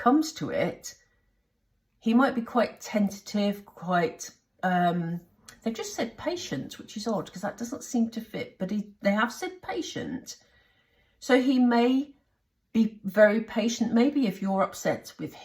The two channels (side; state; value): both; identical; correlation 1.00